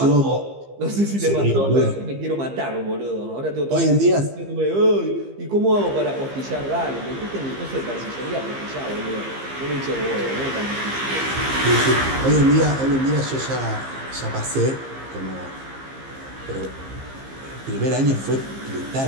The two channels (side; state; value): left; late; 15 ms